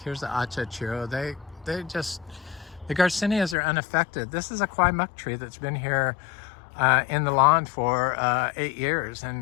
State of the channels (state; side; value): drops out; right; at 3.6 s